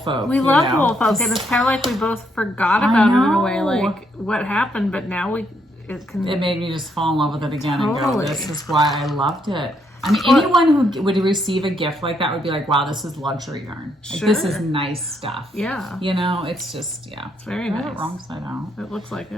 love Woolfolk, and it's kind of like we both forgot about it in a way, like what happened. But now it made me just fall in love with it again and go, this is why I loved it. I mean, Well, anyone who would receive a gift like that would be like, wow, this is luxury yarn. Like, this is nice stuff. Yeah. You know, it's just, It's very I have nice. it wrong side out. It looks like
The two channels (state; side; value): normal; both; correlation 0.74